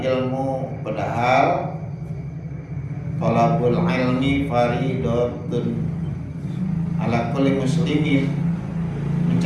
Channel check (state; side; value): identical; both; correlation 1.00